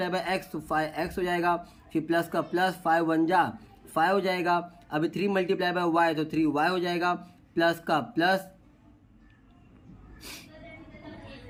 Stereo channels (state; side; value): identical; both; correlation 1.00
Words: x तो 5x हो जाएगा, फिर प्लस का प्लस, 5 1 जा 5 हो जाएगा। अभी 3 × y तो 3y हो जाएगा, प्लस का प्लस,